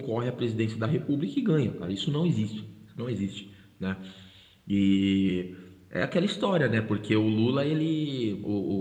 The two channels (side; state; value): both; identical; correlation 1.00